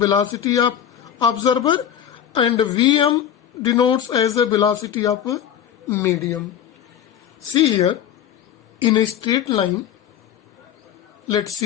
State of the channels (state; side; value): quieter; right; 9.7 dB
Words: of observer, and Vm denotes as the velocity of a medium. See here, in a straight line, let's